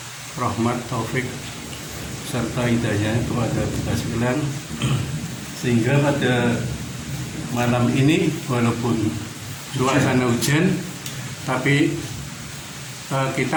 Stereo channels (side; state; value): both; identical; correlation 1.00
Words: rahmat, taufik serta hidayah kepada kita sekalian, sehingga pada malam ini walaupun suasana hujan tapi kita